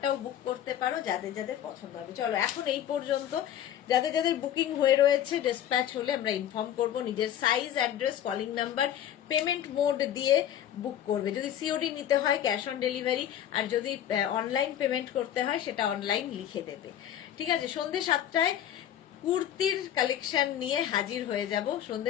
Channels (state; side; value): quieter; right; 10.7 dB